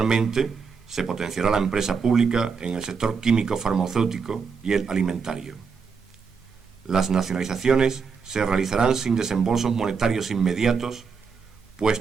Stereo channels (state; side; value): quieter; left; 5.6 dB